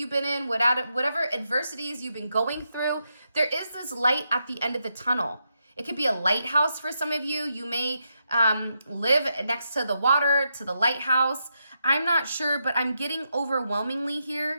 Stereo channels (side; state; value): both; inverted; correlation -0.83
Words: been in, whatever adversities you've been going through, there is this light at the end of the tunnel. It could be a lighthouse for some of you. You may live next to the water, to the lighthouse. I'm not sure, but I'm getting overwhelmingly